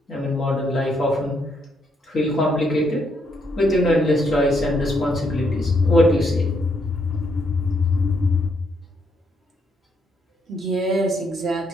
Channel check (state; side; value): normal; both; correlation 0.75